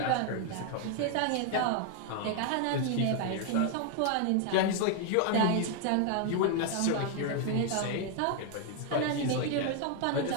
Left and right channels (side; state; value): both; different; correlation 0.00